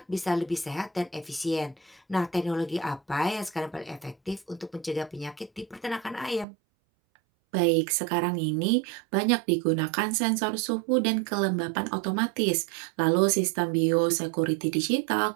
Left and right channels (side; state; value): left; drops out; at 6.5 s